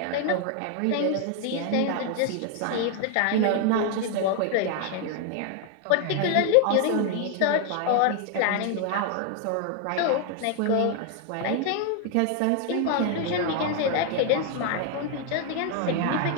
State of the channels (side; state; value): both; different; correlation 0.00